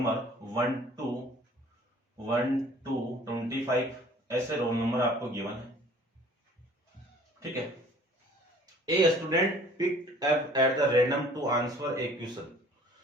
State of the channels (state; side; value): normal; both; correlation 0.52